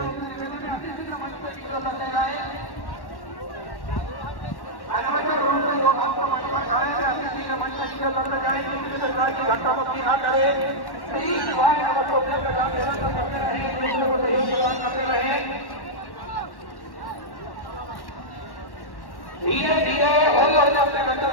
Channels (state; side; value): late; right; 1.1 ms